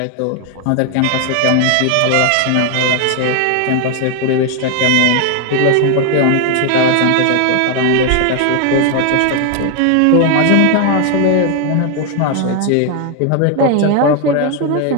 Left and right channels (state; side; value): different; both; correlation 0.01